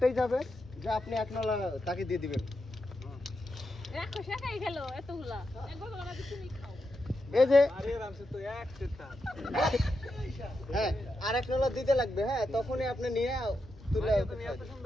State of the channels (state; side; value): normal; both; correlation 0.86